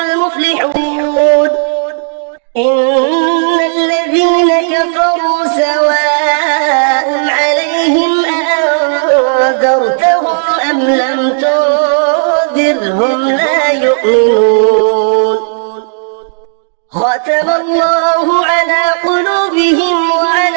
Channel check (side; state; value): left; silent; digital silence